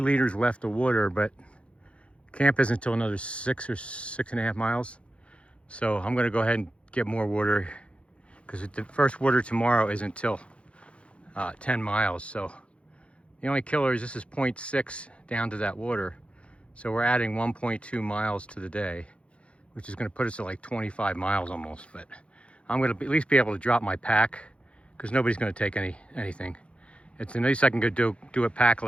left of water, but camp isn't until another 6 or 6.5 miles. So I'm gonna go ahead and get more water because the first water tomorrow isn't until 10 miles. So the only killer is this is 0.6 down to that water. So we're adding 1.2 miles to the day, which is gonna put us at like 25 miles almost. But I'm gonna at least be able to drop my pack, because nobody's going to take anything. It's at least I can go do it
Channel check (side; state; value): right; late; 0.060 ms